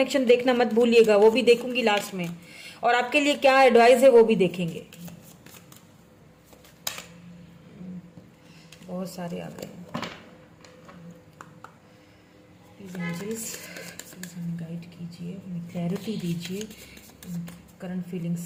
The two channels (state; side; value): identical; both; correlation 1.00